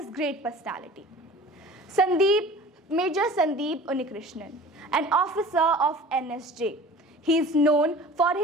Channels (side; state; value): both; normal; correlation 0.42